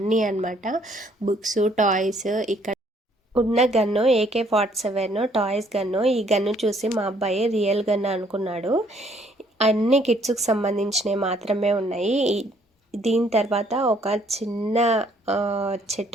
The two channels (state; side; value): normal; both; correlation 0.65